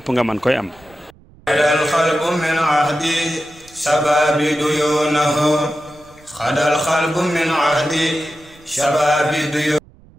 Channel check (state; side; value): noise; right; rumble, 26 dB below the sound